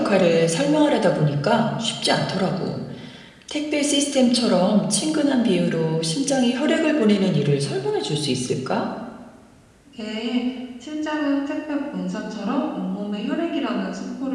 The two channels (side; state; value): both; identical; correlation 1.00